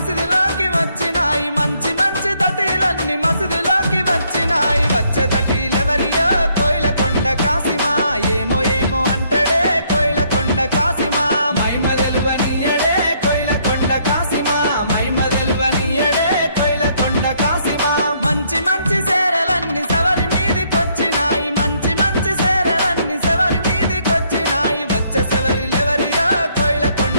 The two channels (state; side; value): inverted; both; correlation -0.69